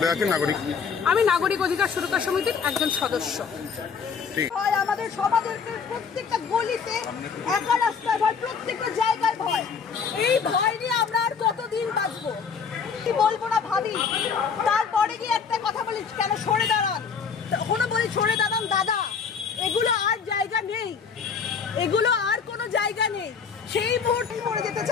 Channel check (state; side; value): quieter; right; 6.1 dB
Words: আছেন? নাগরিক? আমি নাগরিক অধিকার সুরক্ষা সমিতির একজন সদস্য। আমাদের সমাজের প্রত্যেকটা গলিতে একা রাস্তায় ভয়, প্রত্যেকটা জায়গায় ভয়। এই ভয় নিয়ে আমরা আর কতদিন বাঁচবো? কি বলবো না ভাবি, তারপরে গিয়ে একটা কথা বলি, কেন সরে দাঁড়ান? তখনও বলি সরে দাঁড়ান দাদা, এগুলো আর জায়গা নেই, এগুলো আর কোনো জায়গা নেই। সেই মুহূর্তে মরে যেতে